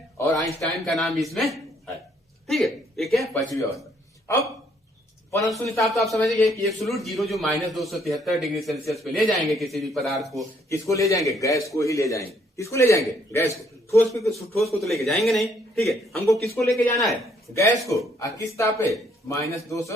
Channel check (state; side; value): normal; both; correlation 0.67